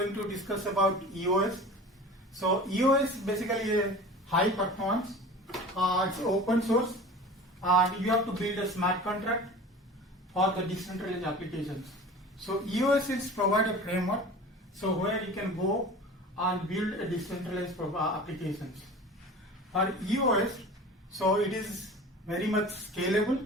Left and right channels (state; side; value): normal; both; correlation 0.38